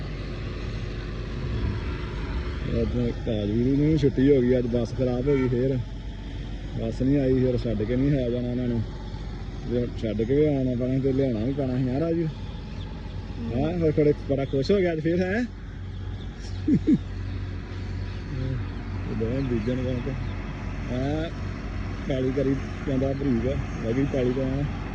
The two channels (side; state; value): both; identical; correlation 1.00